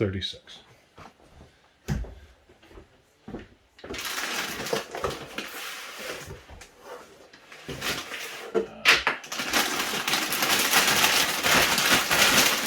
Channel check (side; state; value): both; identical; correlation 1.00